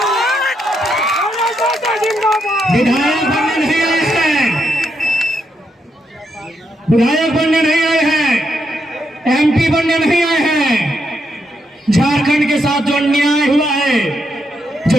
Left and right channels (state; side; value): normal; both; correlation 0.80